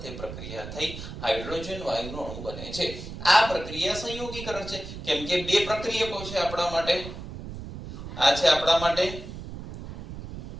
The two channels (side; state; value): right; noise; rumble, 10 dB below the sound